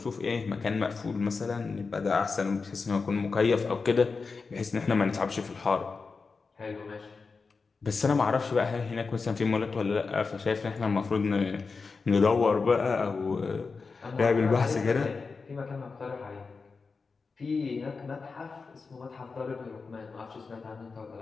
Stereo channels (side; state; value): right; quieter; 4.6 dB